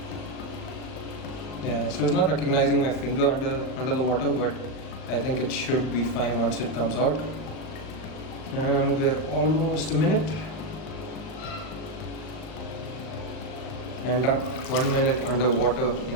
Yeah, so it's not recognizing my finger under the water, but I think it should be fine once it comes out. And we're almost a minute. And done. 1 minute underwater in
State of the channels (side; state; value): right; late; 38 ms